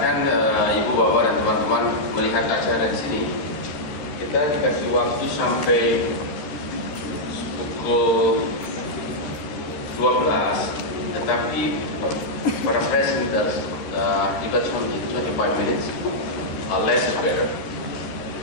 Ibu, Bapak, dan teman-teman melihat acara di sini. Kita dikasih waktu sampai pukul 12, tetapi para presenters give us only 25 minutes. Less is better.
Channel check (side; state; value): right; late; 13 ms